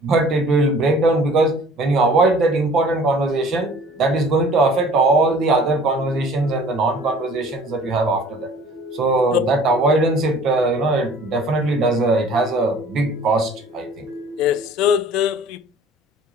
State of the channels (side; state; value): both; normal; correlation 0.50